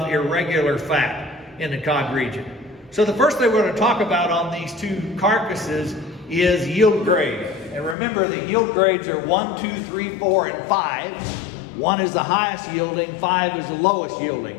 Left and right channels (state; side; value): drops out; right; at 8.0 s